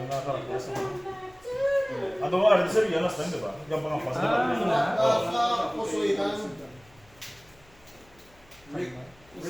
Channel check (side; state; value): left; noise; hum, 29 dB below the sound